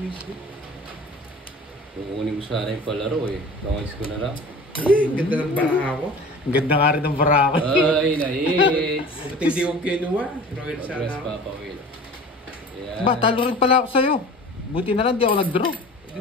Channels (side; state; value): both; normal; correlation 0.41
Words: Kukunin ko sana yung palaro eh. Bangis ko na lang. Eh, ganda ng bara ako. ang ganda nga rin ng barako. Ay, na-hits! Ba't hindi ko kinuha? Royal Progress sana ako. Papa Will. Ayan. Ba, talo rin pala ako sa'yo. Buti na lang di ako nag-draw.